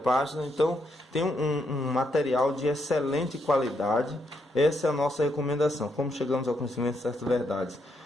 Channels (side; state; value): both; normal; correlation 0.78